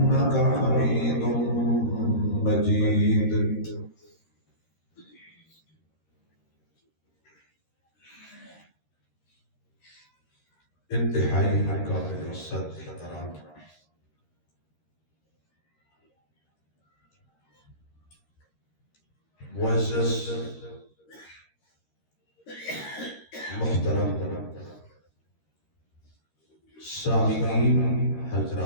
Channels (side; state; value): right; late; 13 ms